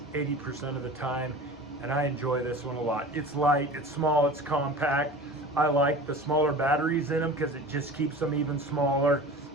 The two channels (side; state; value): both; normal; correlation 0.37